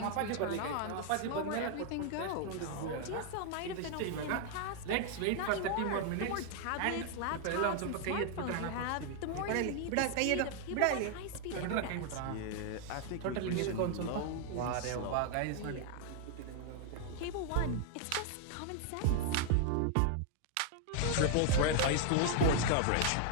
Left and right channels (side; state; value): both; different; correlation 0.00